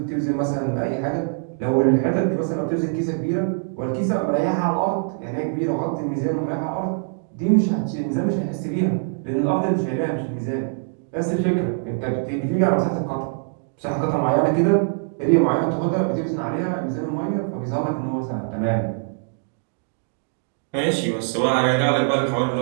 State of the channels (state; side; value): silent; left; 63 dB below the other